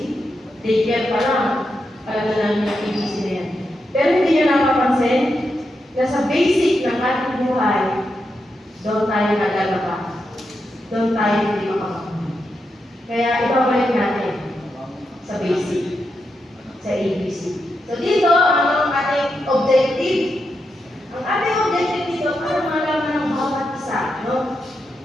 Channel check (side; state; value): both; normal; correlation 0.85